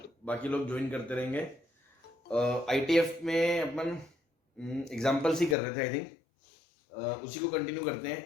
बाकी लोग ज्वाइन करते रहेंगे। आईटीएफ में अपन एग्जाम्पल्स ही कर रहे थे आई थिंक। उसी को कंटिन्यू करते हैं,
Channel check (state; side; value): drops out; right; at 5.6 s